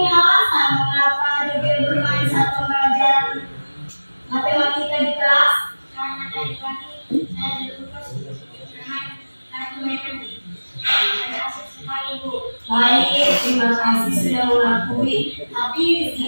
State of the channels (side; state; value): both; inverted; correlation -1.00